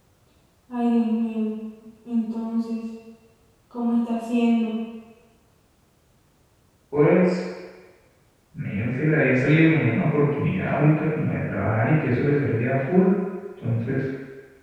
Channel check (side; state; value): both; identical; correlation 1.00